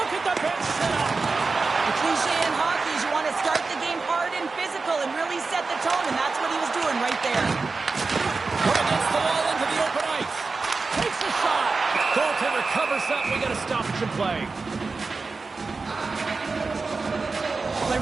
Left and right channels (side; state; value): left; quieter; 4.1 dB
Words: at the bench set up. The cliche in hockey is you want to start the game hard and physical and really set the tone, and that's what he was doing right there. Put against the wall into the open ice. Takes a shot. Goaltender covers up. We got a stoppage in play. Well,